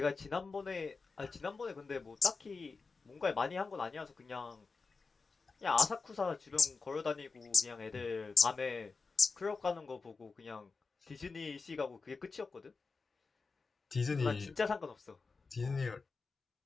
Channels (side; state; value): right; quieter; 4.4 dB